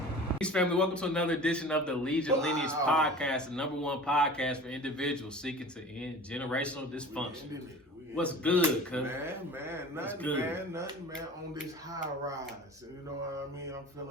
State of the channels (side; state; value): both; normal; correlation 0.40